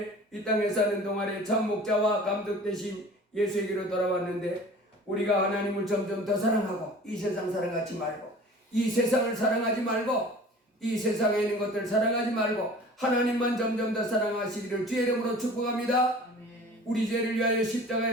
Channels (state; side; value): normal; both; correlation 0.44